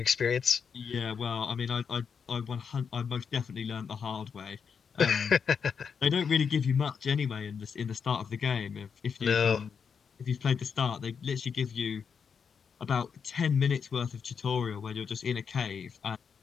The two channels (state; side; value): quieter; right; 6.4 dB